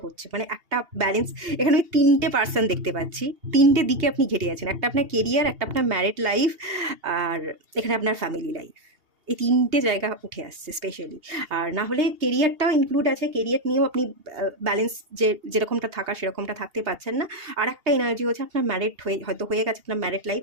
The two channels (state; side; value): late; left; 2.8 ms